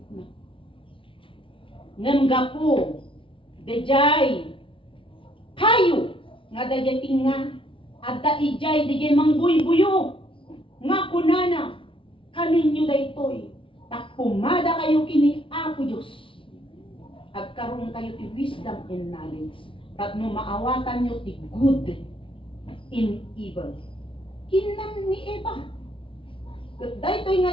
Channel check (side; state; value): right; late; 0.25 ms